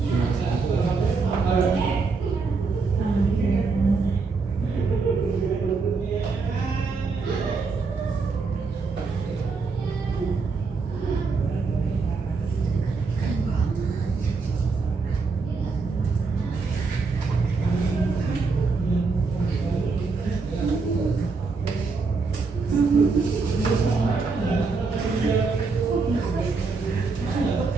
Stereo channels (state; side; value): quieter; left; 4.4 dB